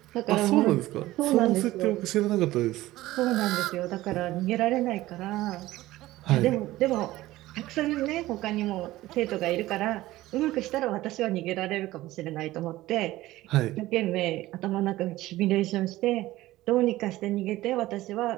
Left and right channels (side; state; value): left; quieter; 16.8 dB